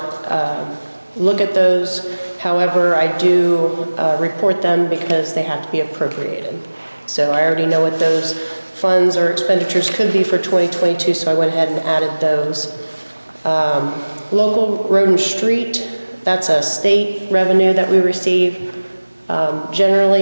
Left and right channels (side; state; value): both; inverted; correlation -1.00